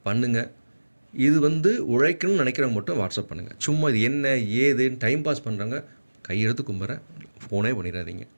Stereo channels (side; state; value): both; inverted; correlation -1.00